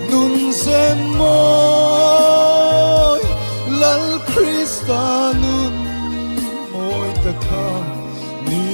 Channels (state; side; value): inverted; both; correlation -1.00